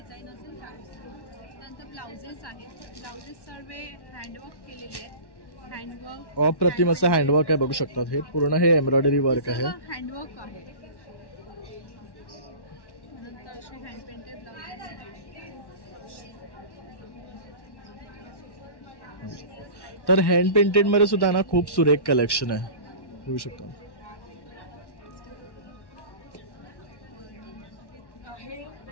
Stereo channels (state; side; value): late; right; 1.1 ms